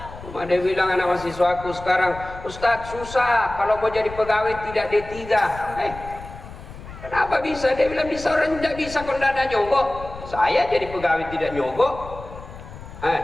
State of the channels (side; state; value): left; noise; rumble, 14 dB below the sound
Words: Ada bilang anak mahasiswaku sekarang, Ustadz susah kalau mau jadi pegawai tidak D3. Kenapa bisa? Dia bilang bisa, orang tidak bisa kalau tidak ada nyogok. Saya jadi pegawai tidak nyogok.